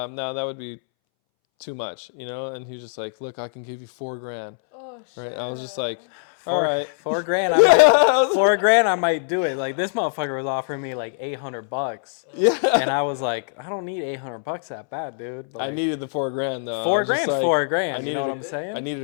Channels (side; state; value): right; silent; 63 dB below the other